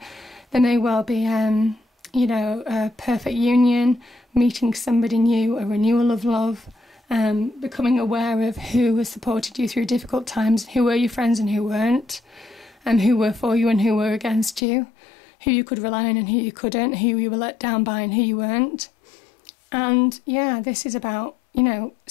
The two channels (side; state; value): right; drops out; at 14.6 s